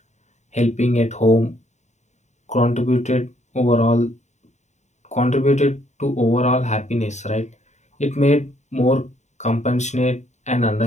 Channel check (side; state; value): right; late; 0.34 ms